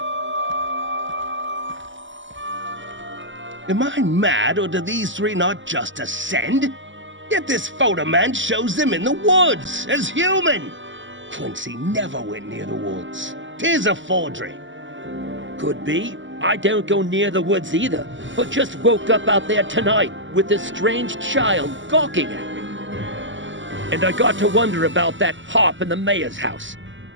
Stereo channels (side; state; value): left; late; 0.55 ms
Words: Am I mad, or do these three not just ascend? Yet this photoman shows them in the woods, as human. Quincy never went near the woods. 'Tis a forgery. Could be. I don't go near the woods either, but just woke up out there tonight with this strange child gawking at me. And I got to wonder about that harp in the mayor's house.